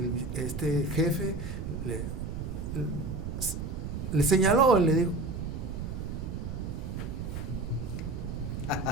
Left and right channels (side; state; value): right; noise; rumble, 5 dB below the sound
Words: este jefe le señaló, le dijo,